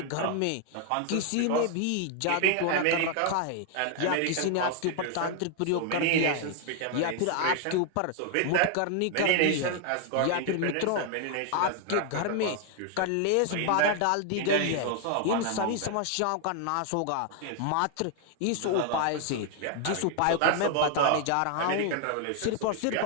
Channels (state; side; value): different; both; correlation 0.00